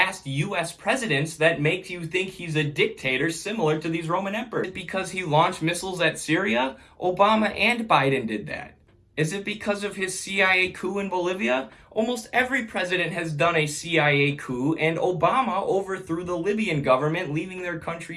US presidents that makes you think he's a dictator similar to these Roman emperors? Is it because he launched missiles at Syria? Obama and Biden did that. Is it because of his CIA coup in Bolivia? Almost every president has done a CIA coup, and Obama overthrew the Libyan government, leaving their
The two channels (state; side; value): identical; both; correlation 1.00